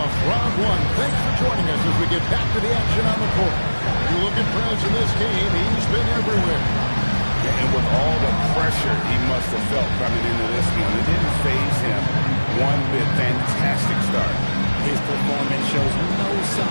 Joining us as we get back to the action on the court. You look at Perez in this game, he's been everywhere. Yeah, and with all the pressure he must have felt coming into this one, it didn't faze him one bit. Fantastic start. His performance shows no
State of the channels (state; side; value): inverted; both; correlation -1.00